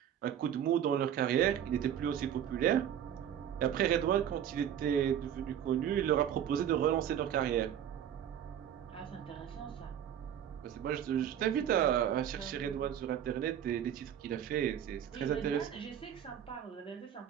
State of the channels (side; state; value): left; quieter; 9.7 dB